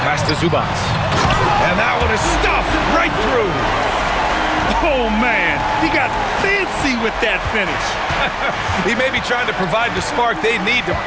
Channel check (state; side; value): identical; both; correlation 1.00